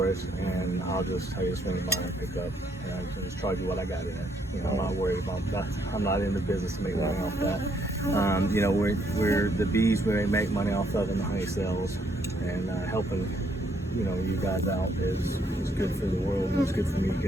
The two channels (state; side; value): normal; both; correlation 0.71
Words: us, and I'll just tell you to swing by and pick up, and I can just charge you what I got in it. You know, I'm not worried about that. I'm not in the business to make money off that. You know, we're the bees we make money off of, and the honey cells, and helping, you know, you guys out is good for the world, and it's good for me,